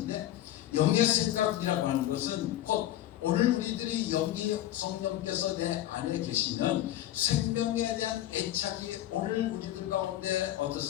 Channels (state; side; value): quieter; right; 13.4 dB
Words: 영의 생각이라고 하는 것은 곧 오늘 우리들이 영이 성령께서 내 안에 계시면 생명에 대한 애착이 오늘 우리들 가운데